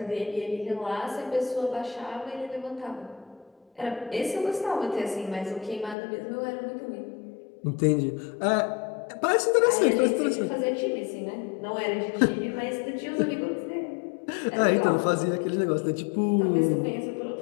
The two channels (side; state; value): right; drops out; at 6.0 s